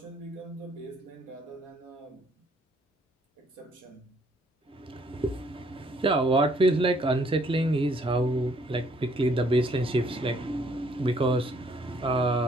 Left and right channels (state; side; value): normal; both; correlation 0.65